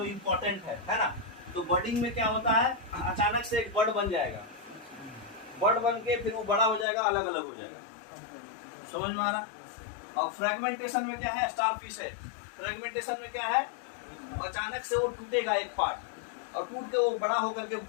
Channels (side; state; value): right; drops out; at 6.9 s